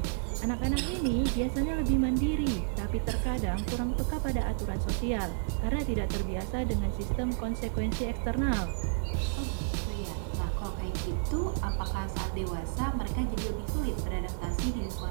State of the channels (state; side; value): silent; left; digital silence